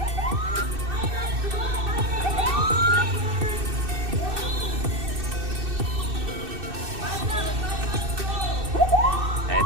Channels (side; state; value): left; late; 2.6 ms